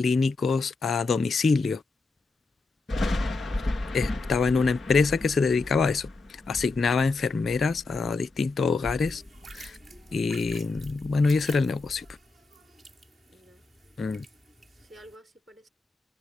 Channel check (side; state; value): right; quieter; 3.9 dB